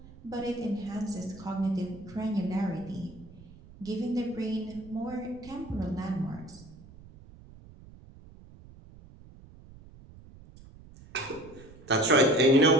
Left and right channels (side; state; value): right; noise; rumble, 20 dB below the sound